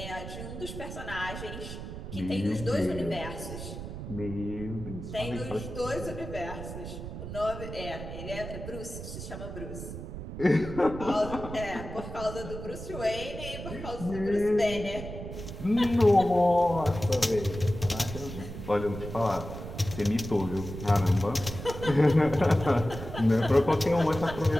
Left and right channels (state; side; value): noise; right; rumble, 9 dB below the sound